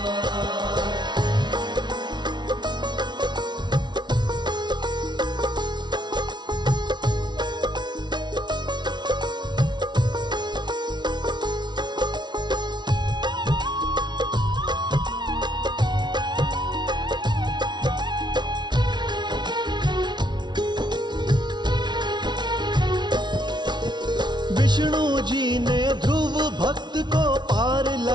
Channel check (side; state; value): left; late; 0.21 ms